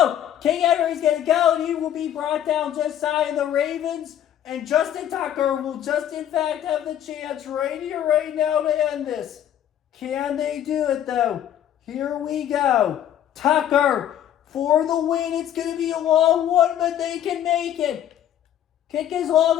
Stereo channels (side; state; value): right; quieter; 10.7 dB